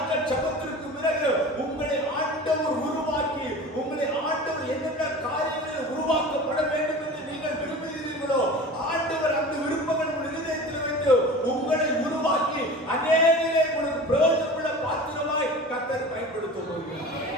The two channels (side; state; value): both; normal; correlation 0.36